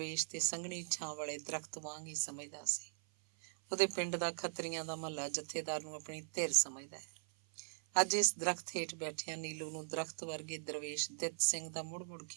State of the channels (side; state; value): left; silent; 51 dB below the other